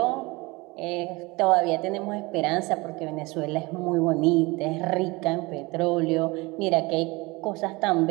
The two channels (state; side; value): quieter; left; 24.1 dB